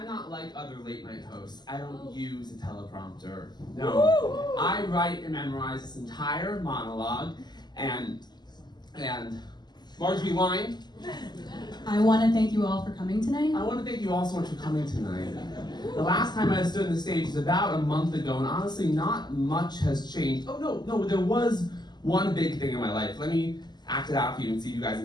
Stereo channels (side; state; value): right; late; 0.21 ms